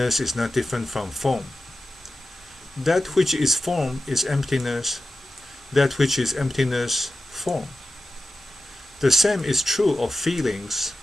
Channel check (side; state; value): both; normal; correlation 0.92